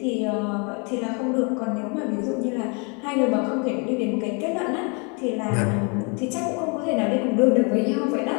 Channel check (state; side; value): quieter; right; 34.1 dB